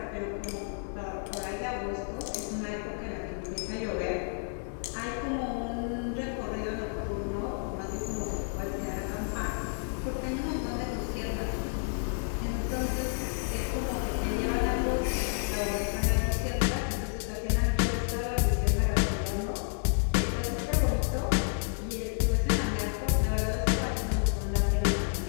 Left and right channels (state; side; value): silent; right; 57 dB below the other